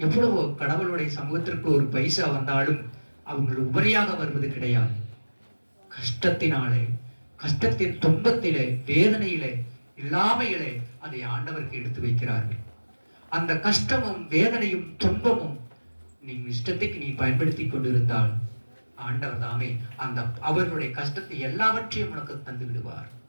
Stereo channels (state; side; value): inverted; both; correlation -1.00